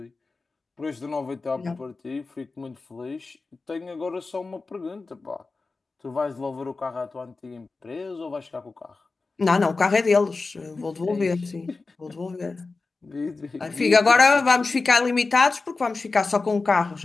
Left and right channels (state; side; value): quieter; right; 3.9 dB